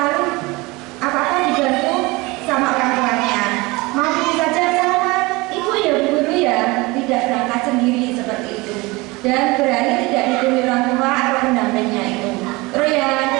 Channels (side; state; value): left; quieter; 23.4 dB